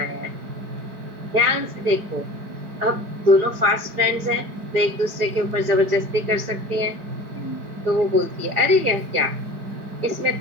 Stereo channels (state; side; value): late; left; 4.9 ms